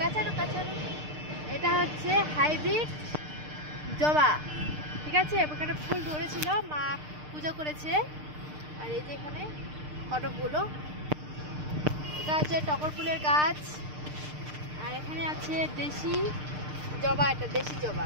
কাঁচানো, এটা হচ্ছে হাইব্রিড জবা, ঠিক আছে। এখানে ফুল ধরেছিল, মা পূজা করেছে। আর এই যে এখানে কটকগুলো, এটা হচ্ছে টগর ফুলের গাছ। আর এখানে আছে দেশি জবা, এটা দেশি জবা,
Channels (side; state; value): left; late; 6.6 ms